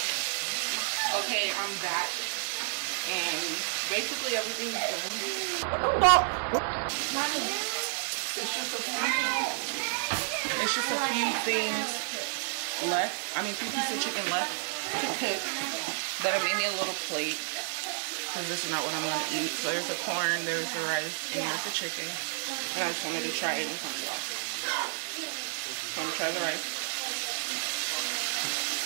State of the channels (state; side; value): silent; left; digital silence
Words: Okay, I'm back and basically everything's done. It's just a few things left. I mean, 2 pieces of chicken left to cook that I made me a little plate. Because this is not what I'm going to eat. So there's the corn, there's the rice, and there's the chicken. And I just wanted to try it in front of y'all. So I'm going to try the rice.